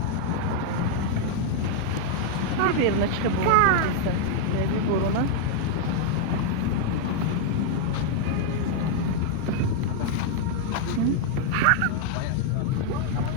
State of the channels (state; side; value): different; both; correlation 0.00